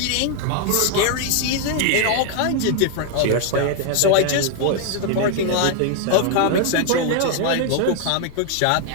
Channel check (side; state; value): both; different; correlation 0.00